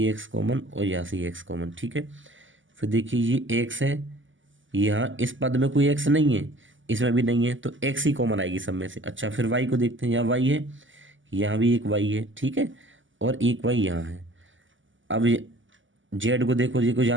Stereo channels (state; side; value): late; left; 0.56 ms